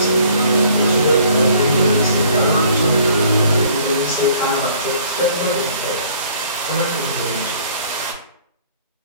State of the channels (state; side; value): inverted; both; correlation -0.57